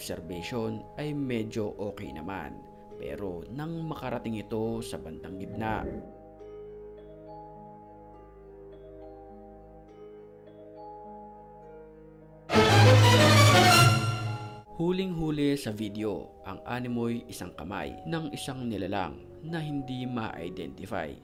ay medyo okay naman. Pero nang makarating ito sa bandang gitna, huling-huli sa video, ang animoy isang kamay ng isang nilalang na hindi ma-identify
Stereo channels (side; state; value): both; identical; correlation 1.00